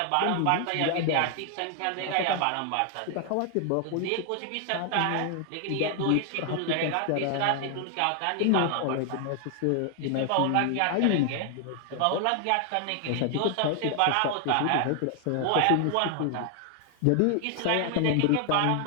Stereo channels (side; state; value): both; different; correlation 0.00